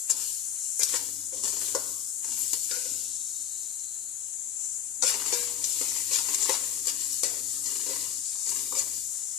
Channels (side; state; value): right; quieter; 9.7 dB